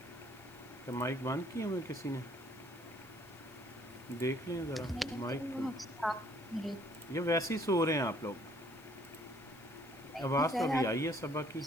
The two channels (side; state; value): left; noise; hiss, 24 dB below the sound